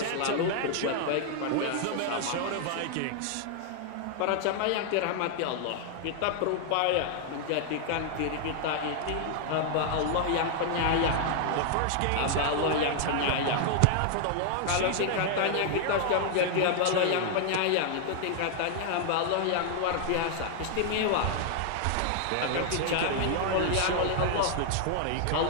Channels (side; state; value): both; different; correlation 0.00